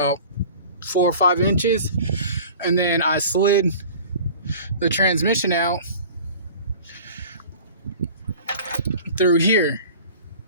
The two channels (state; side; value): inverted; both; correlation -0.43